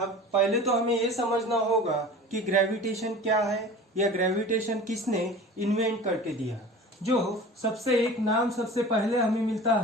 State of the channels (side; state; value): both; normal; correlation 0.39